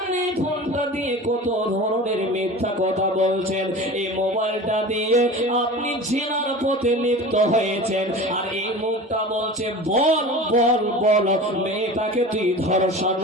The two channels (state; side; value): normal; both; correlation 0.35